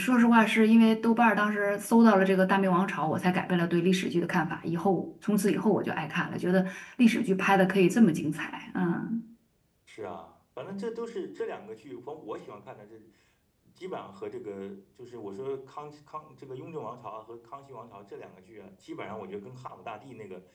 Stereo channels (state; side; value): identical; both; correlation 1.00